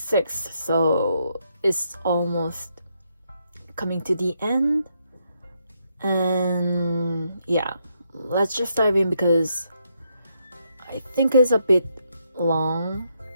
so it's almost coming to the end. And yeah, let's just dive in because I think it's a bit long.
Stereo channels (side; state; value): both; inverted; correlation -0.78